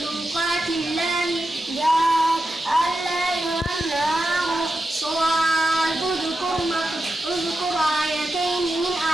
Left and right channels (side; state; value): both; normal; correlation 0.88